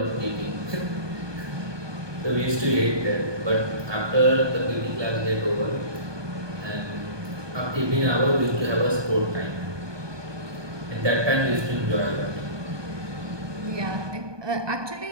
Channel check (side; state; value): left; late; 1.2 ms